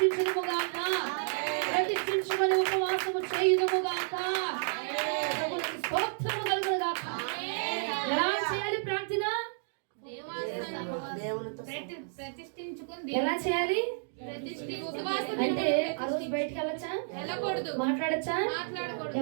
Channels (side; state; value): left; silent; digital silence